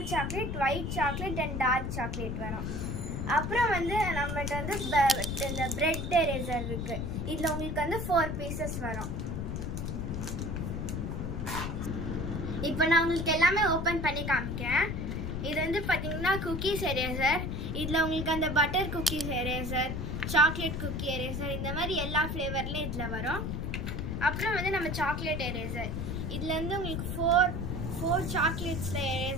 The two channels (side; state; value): left; noise; rumble, 3 dB below the sound